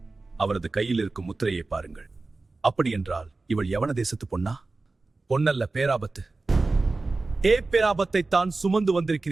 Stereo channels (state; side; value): quieter; left; 3.5 dB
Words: அவரது கையில் இருக்கும் முத்திரையை பாருங்கள். அப்படி என்றால் இவள் யவன தேசத்து பொன்னா? பொன்னல்ல, பேராபத்து. பேராபத்தை தான் சுமந்து